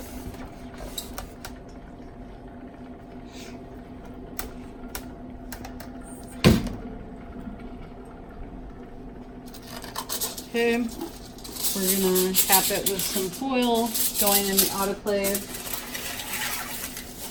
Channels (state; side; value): identical; both; correlation 1.00